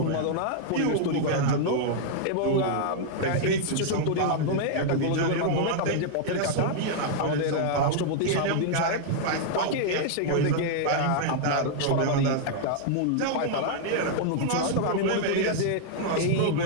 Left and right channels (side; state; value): both; different; correlation -0.01